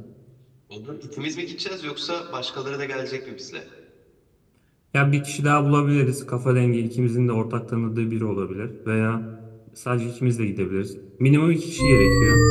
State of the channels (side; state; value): both; identical; correlation 1.00